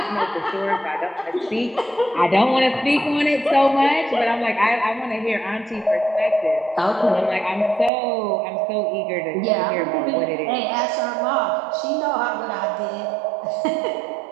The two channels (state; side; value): drops out; left; at 7.9 s